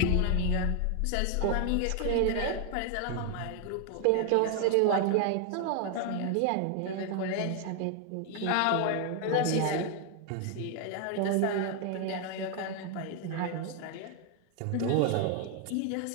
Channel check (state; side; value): different; both; correlation 0.00